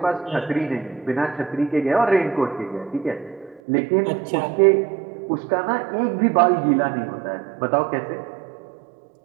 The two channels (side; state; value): left; drops out; at 3.6 s